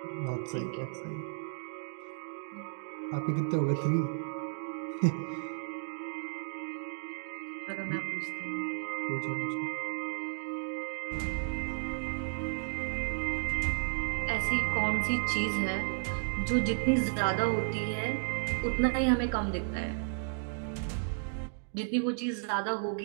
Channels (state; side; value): silent; left; digital silence